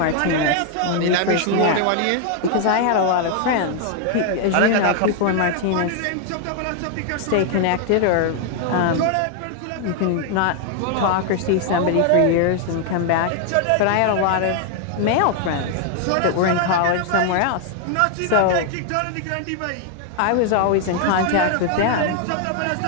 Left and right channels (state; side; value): different; both; correlation 0.00